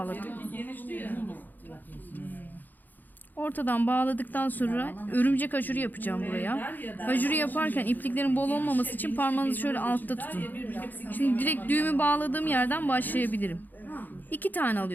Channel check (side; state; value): right; late; 0.086 ms